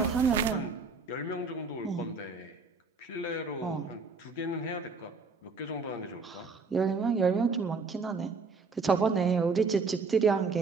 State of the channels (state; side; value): quieter; left; 4.4 dB